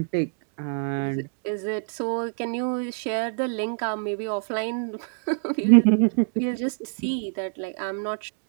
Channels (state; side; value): silent; left; 61 dB below the other